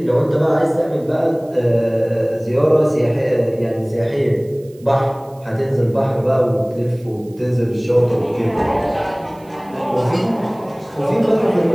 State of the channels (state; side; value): noise; right; hiss, 29 dB below the sound